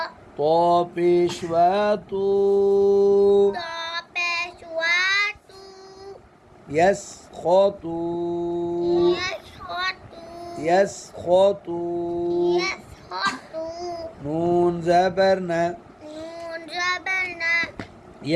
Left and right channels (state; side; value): identical; both; correlation 1.00